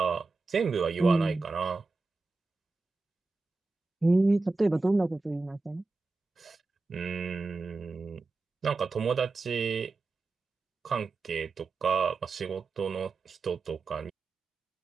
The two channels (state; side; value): quieter; left; 3.6 dB